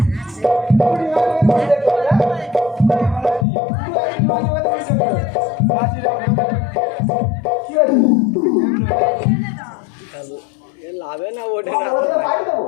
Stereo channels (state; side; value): drops out; right; at 3.5 s